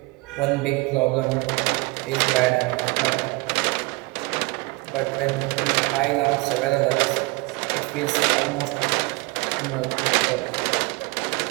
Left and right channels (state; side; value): quieter; left; 25.4 dB